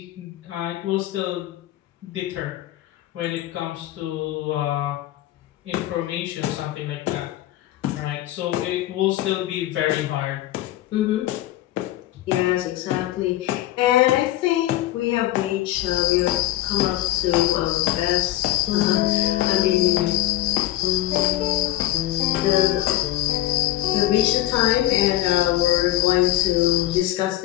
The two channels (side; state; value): right; quieter; 15.0 dB